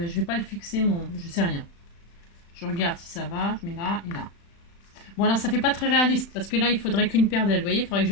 vais pas le fixer mon. Je sais rien. Je regarde si ça va. Je mets là et là. Bon alors ça fait pas très réaliste. Parce que là, il faudrait qu'une paire d'ailes. Vous voyez, il faudrait que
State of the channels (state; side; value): late; right; 35 ms